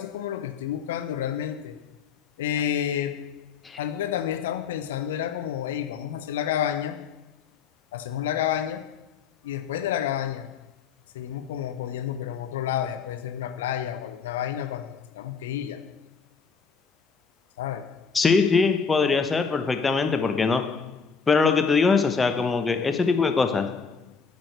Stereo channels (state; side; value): quieter; right; 5.7 dB